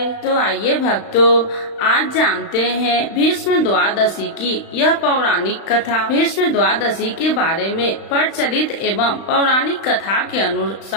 तो आइए भक्तों, आज जानते हैं भीष्म द्वादशी की यह पौराणिक कथा। भीष्म द्वादशी के बारे में प्रचलित एवं पौराणिक कथा के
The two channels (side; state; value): right; late; 35 ms